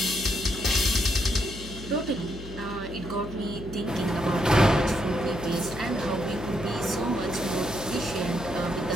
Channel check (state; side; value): noise; left; hum, 13 dB below the sound